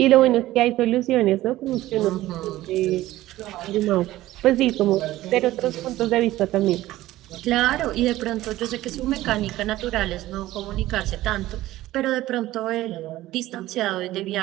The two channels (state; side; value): quieter; left; 15.9 dB